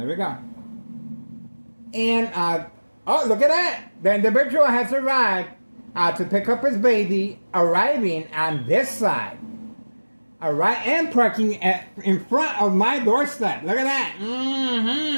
we go. And, oh, look at that. The individual has arrived to pick up his baby, arriving on this side. And parking in front of my doorstep. Look at that.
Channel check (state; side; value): inverted; both; correlation -1.00